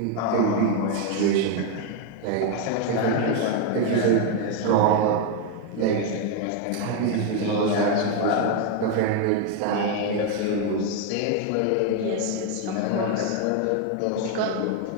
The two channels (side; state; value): both; different; correlation 0.01